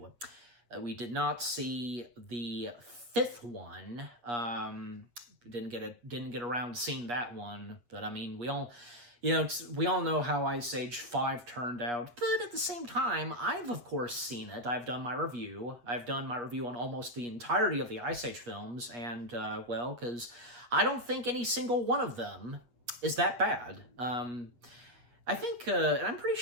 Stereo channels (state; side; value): late; left; 8.4 ms